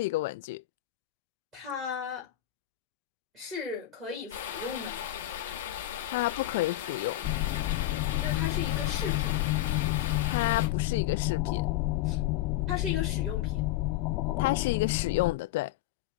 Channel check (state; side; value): quieter; right; 14.7 dB